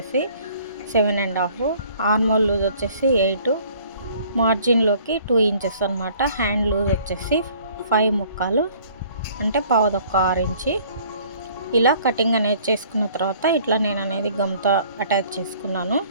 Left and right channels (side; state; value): both; inverted; correlation -0.56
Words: 7.5, ఆర్మోల్ లూజ్ వచ్చేసి 8, మార్జిన్లోకి 2 ఇంచెస్ అనమాట. హ్యాండ్ లూజ్ వచ్చేసి 5 ముక్కాలు అంటే 1/4 ఇంచి. ఇలా కటింగ్ అనేది చేసుకున్న తర్వాత ఇట్లా నేను అనేది గమ్తో అటాచ్ చేసుకున్నాను.